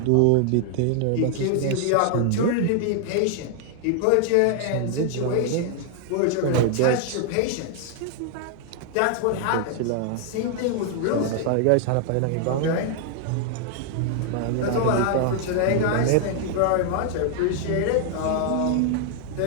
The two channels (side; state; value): both; different; correlation 0.00